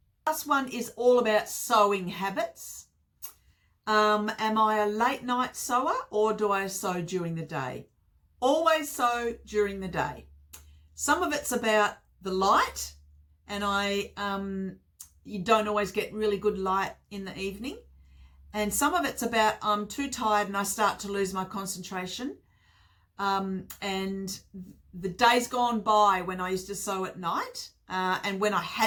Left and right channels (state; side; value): identical; both; correlation 1.00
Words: Last one is all about sewing habits. Am I a late night sewer, or do I sew during the day? Always sew during the day. Some of it's about the light, and you don't always get really good light in the evening. And some of it's about I'm too tired and I start to lose my concentration. And the days gone by when I used to sew at night, and when I